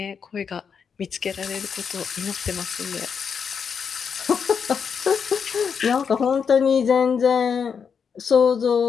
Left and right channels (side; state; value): right; quieter; 6.5 dB